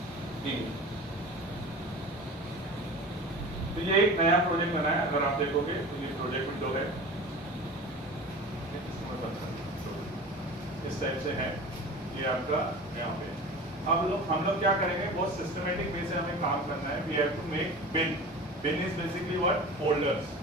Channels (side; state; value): both; normal; correlation 0.35